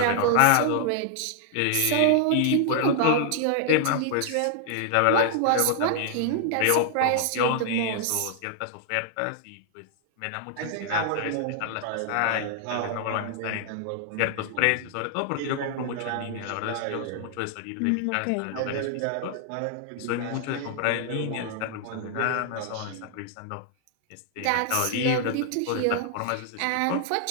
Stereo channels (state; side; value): different; both; correlation -0.01